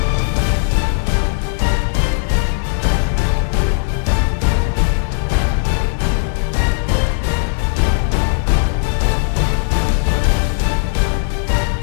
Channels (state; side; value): silent; right; 68 dB below the other